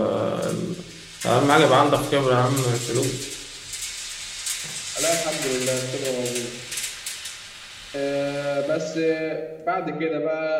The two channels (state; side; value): identical; both; correlation 1.00